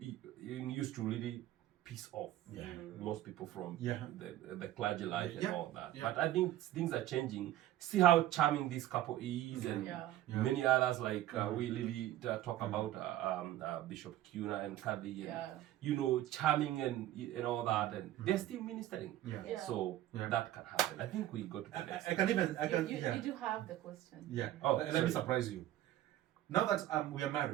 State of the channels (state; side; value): quieter; left; 13.9 dB